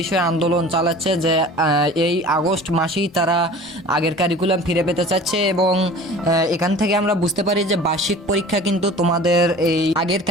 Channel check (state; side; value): normal; both; correlation 0.42